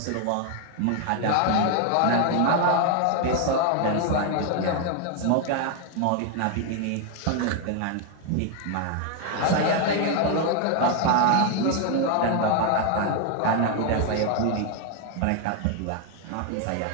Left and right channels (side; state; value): both; different; correlation 0.00